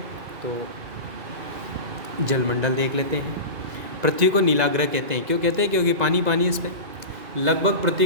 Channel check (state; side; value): late; left; 2.0 ms